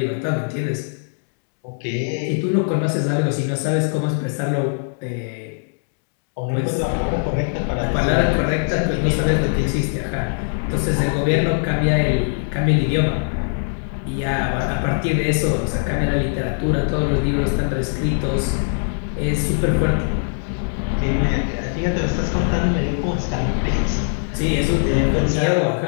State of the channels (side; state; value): right; silent; digital silence